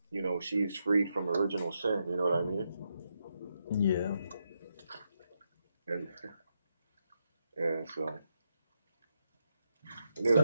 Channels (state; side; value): inverted; both; correlation -0.82